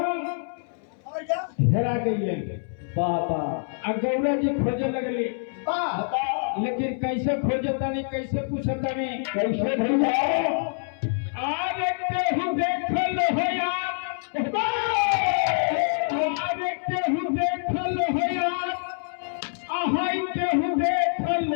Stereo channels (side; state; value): right; silent; 61 dB below the other